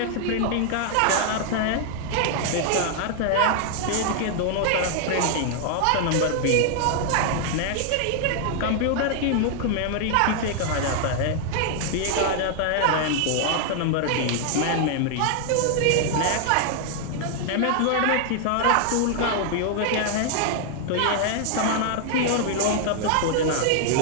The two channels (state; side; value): different; both; correlation 0.00